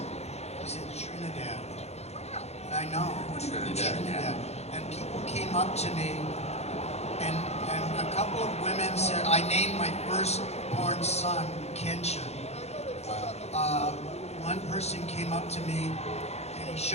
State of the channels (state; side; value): late; right; 0.31 ms